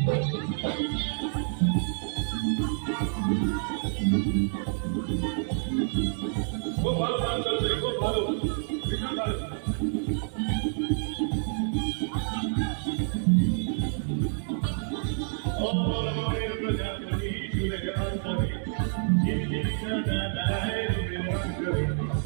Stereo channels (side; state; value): left; silent; 59 dB below the other